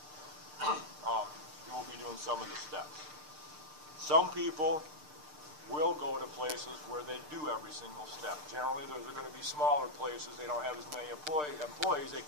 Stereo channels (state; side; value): late; left; 6.7 ms